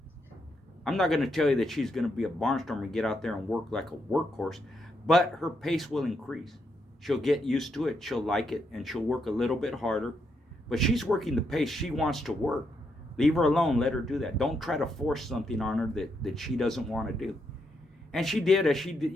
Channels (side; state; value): both; normal; correlation 0.79